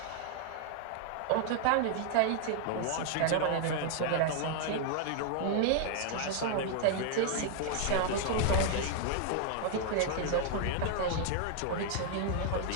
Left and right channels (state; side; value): different; both; correlation 0.00